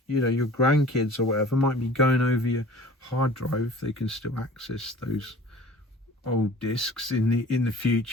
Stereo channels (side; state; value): both; normal; correlation 0.44